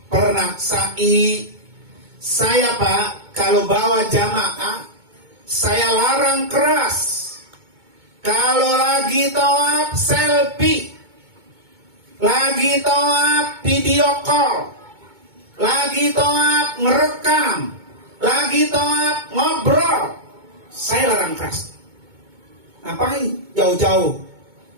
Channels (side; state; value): left; late; 2.2 ms